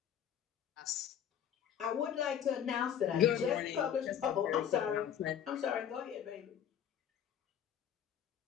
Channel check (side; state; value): right; quieter; 9.2 dB